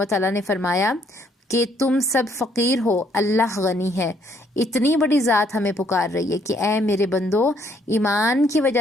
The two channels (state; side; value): normal; both; correlation 0.67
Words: تعالیٰ نے فرمایا کہ تم سب فقیر ہو، اللہ غنی ہے۔ اتنی بڑی ذات ہمیں پکار رہی ہے کہ اے میرے بندو، ایمان کی